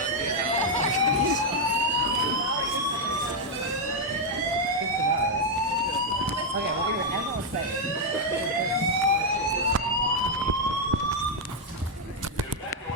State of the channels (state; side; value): normal; both; correlation 0.00